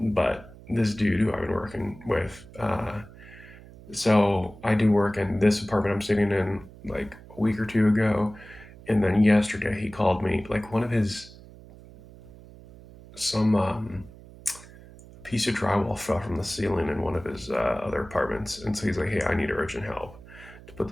But this dude who I've been working with, so I do work in this apartment I'm sitting in like a week or two ago, and then yesterday he called me, like one of his some piece of drywall fell from the ceiling in one of his other apartments, and so he's like, "Hey, I need urgent help to put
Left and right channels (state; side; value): noise; right; hum, 20 dB below the sound